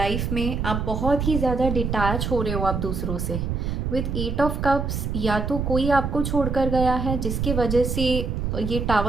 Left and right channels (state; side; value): noise; right; rumble, 2 dB below the sound